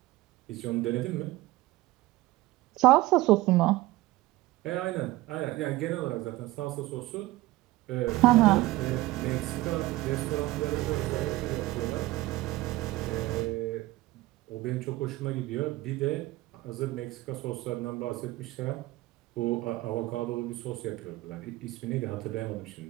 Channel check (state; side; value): quieter; left; 18.6 dB